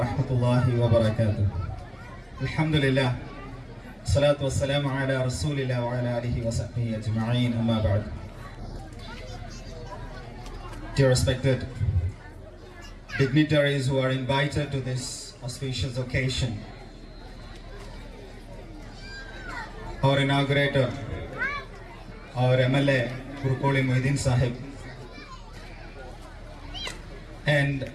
الله وبركاته. الحمد لله الصلاة والسلام على رسول الله وعلى آله وصحبه أجمعين. أما بعد. Dear respected dignitaries who are invited to this auspicious occasion, our inaugurator, our MLA Kurkoli Muhyiddin Sahib, and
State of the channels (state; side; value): identical; both; correlation 1.00